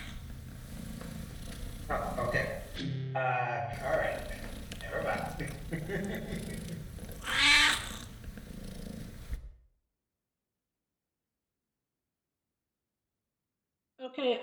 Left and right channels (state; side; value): identical; both; correlation 1.00